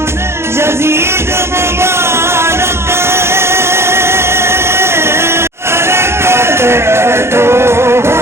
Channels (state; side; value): late; left; 0.12 ms